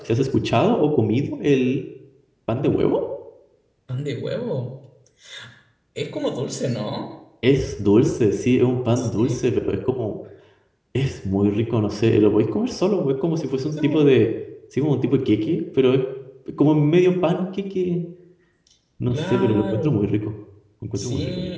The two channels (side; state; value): both; identical; correlation 1.00